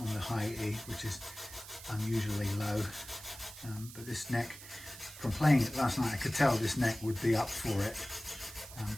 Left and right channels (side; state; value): right; noise; hiss, 15 dB below the sound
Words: the high E, which is unusually low. But this neck, from playing it last night, I could tell this neck would be up for it.